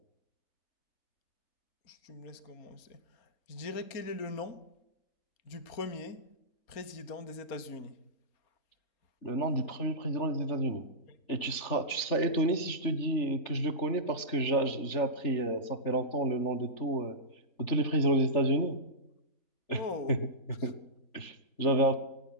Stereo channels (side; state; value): right; late; 3.4 ms